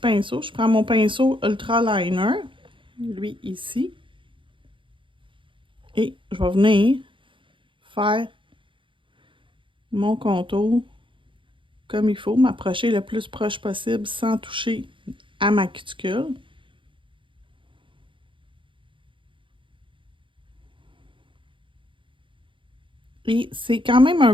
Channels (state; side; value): late; left; 0.24 ms